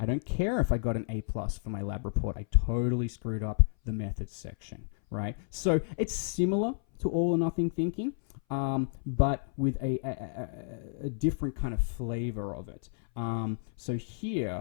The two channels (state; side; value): silent; right; 57 dB below the other